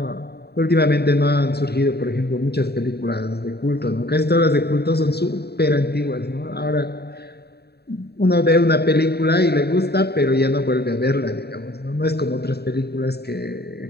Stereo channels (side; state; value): right; late; 0.47 ms